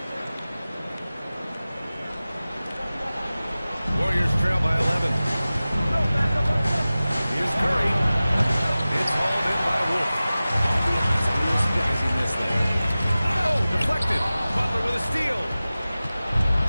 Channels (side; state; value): both; inverted; correlation -0.97